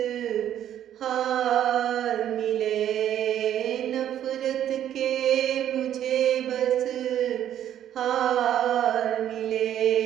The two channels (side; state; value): left; quieter; 10.9 dB